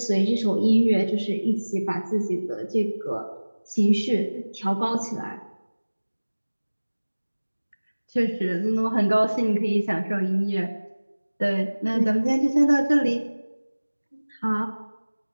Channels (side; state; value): both; inverted; correlation -1.00